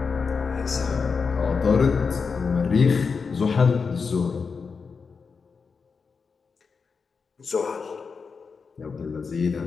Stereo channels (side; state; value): right; quieter; 5.2 dB